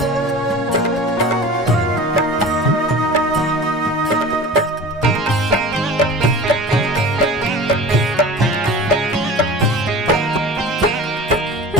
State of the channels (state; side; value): normal; both; correlation 0.38